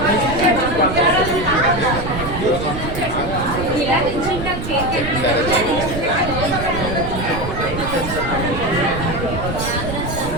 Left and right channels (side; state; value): right; noise; rumble, 7 dB below the sound